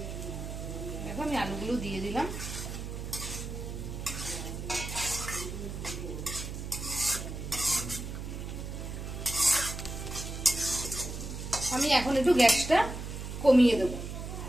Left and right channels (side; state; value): right; noise; hum, 7 dB below the sound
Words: এখন আমি আলুগুলো দিয়ে দিলাম। আমি এখন একটু গ্যাসটা কমিয়ে দেব।